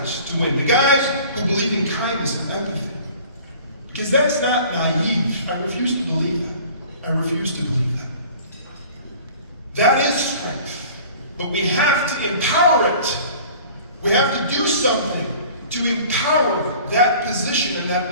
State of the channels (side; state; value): both; inverted; correlation -0.46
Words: to win, the guys who believe in kindness and empathy. Because that's not naive. I refuse to believe that. I refuse to believe that. That is strength. But we have to empower it. We have to do something to empower that position and that